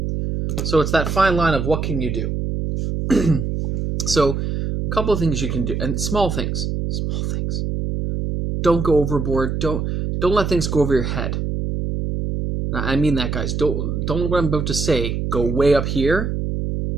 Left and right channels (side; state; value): right; noise; hum, 2 dB below the sound